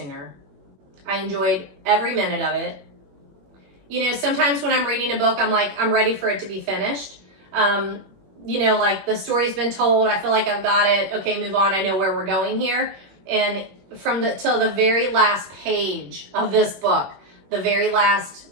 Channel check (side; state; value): left; late; 21 ms